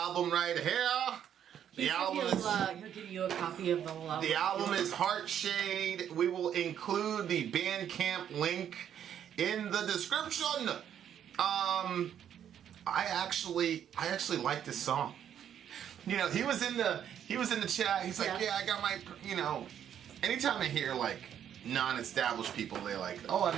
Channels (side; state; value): left; quieter; 9.5 dB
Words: right here. He'll give you a copy of the whole album. The album is Heartshade. We will include the Bandcamp link in the description. I actually like this song. You know, he was in the chat. He's like, yeah, I got my, you know, anytime I hear like non-established people, they're like, oh, I'm